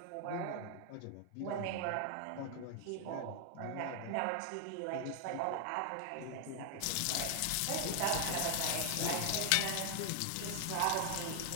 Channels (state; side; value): different; both; correlation 0.00